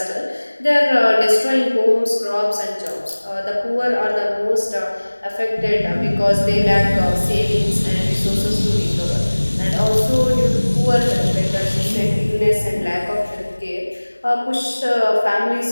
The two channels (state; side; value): inverted; both; correlation -1.00